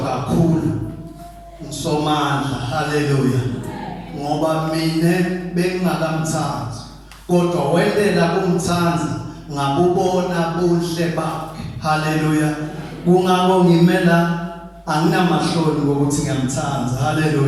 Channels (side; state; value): both; identical; correlation 1.00